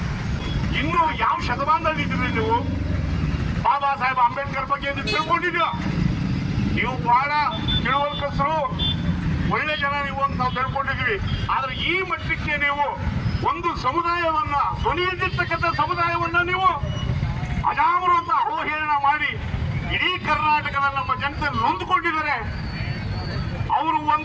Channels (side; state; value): both; identical; correlation 1.00